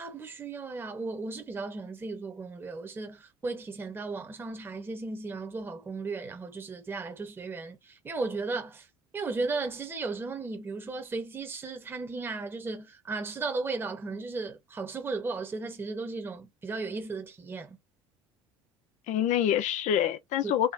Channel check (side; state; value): both; normal; correlation 0.47